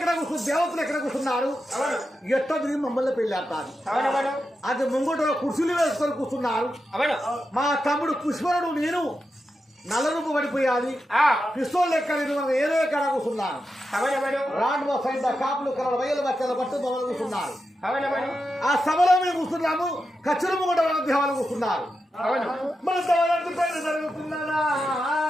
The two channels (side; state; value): both; normal; correlation 0.89